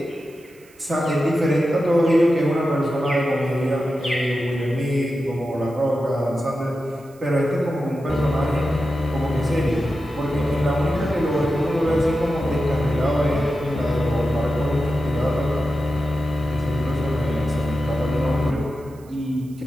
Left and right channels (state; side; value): noise; right; hiss, 28 dB below the sound